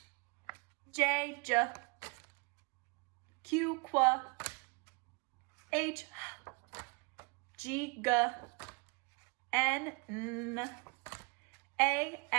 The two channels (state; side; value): quieter; left; 31.3 dB